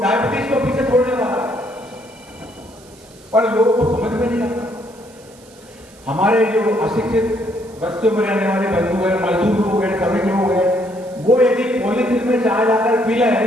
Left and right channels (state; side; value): noise; right; hiss, 25 dB below the sound